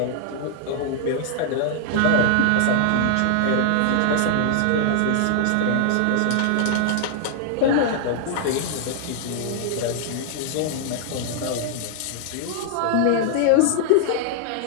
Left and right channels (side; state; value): both; different; correlation -0.01